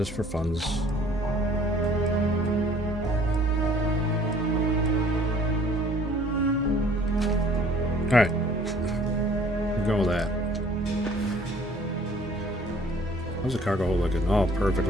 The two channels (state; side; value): normal; both; correlation 0.55